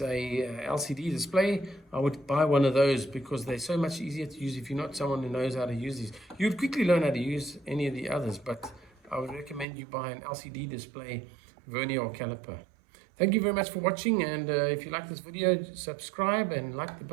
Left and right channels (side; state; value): left; drops out; at 9.7 s